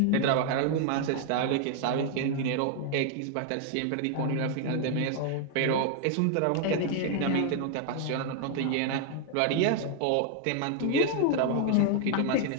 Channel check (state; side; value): different; both; correlation 0.00